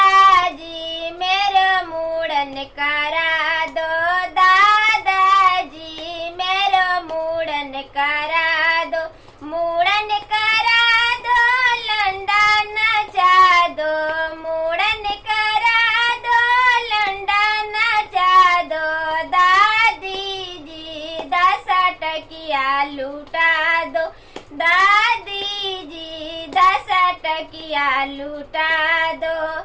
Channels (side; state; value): both; identical; correlation 1.00